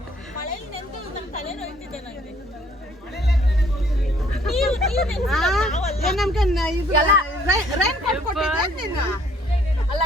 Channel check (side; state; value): both; normal; correlation 0.61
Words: ಮಳೆಯಲ್ಲಿ ನೆಂದು ನಮ್ಮ ತಲೆ ನೋಯ್ತಿದೆ ನನಗೆ. ಅಲ್ಲ